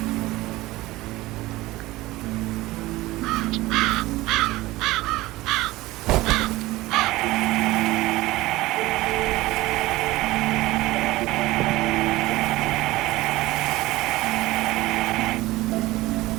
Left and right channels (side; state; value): left; quieter; 18.6 dB